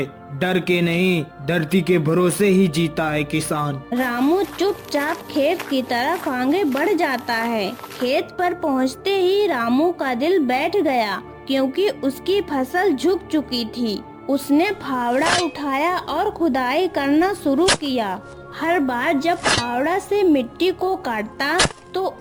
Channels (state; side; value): identical; both; correlation 1.00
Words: डर के नहीं, धरती के भरोसे ही जीता है किसान। रामू चुपचाप खेत की तरफ आगे बढ़ जाता है। खेत पर पहुंचते ही रामू का दिल बैठ गया, क्योंकि उसकी फसल झुक चुकी थी। उसने फावड़ा उठाया और खुदाई करना शुरू किया। हर बार जब फावड़ा से मिट्टी को काटता तो